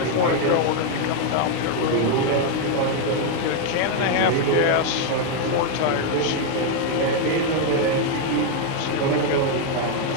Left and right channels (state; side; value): different; both; correlation 0.01